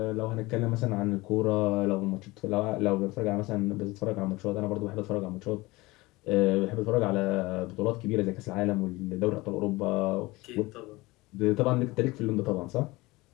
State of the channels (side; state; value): right; quieter; 21.5 dB